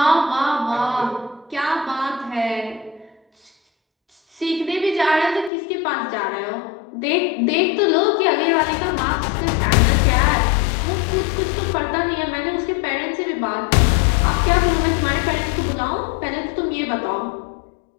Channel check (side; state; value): right; drops out; at 5.5 s